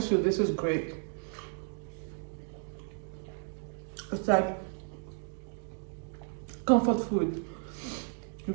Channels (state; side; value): silent; left; 56 dB below the other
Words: you, this is great. It's like comfort food. You